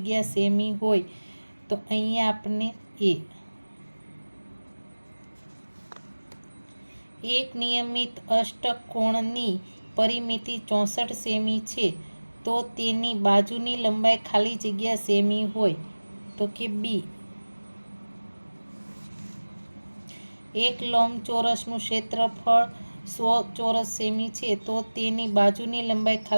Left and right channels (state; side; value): inverted; both; correlation -1.00